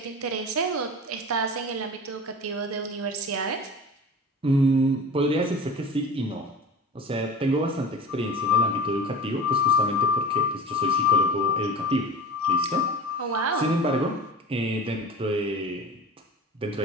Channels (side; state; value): both; normal; correlation 0.36